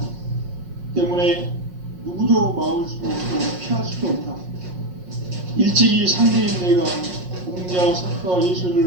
때문에 누구도 막을 수 없고 피할 수도 없다. 일찍이 상제인 내가 공자, 석가,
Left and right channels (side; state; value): left; late; 5.5 ms